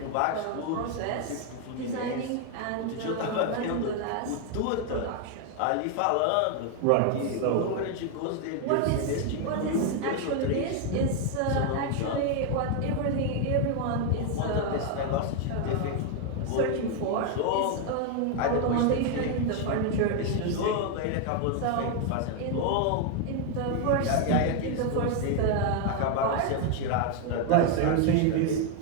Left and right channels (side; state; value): both; different; correlation 0.01